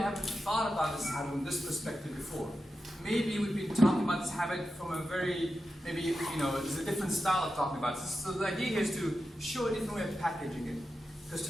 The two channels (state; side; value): normal; both; correlation 0.90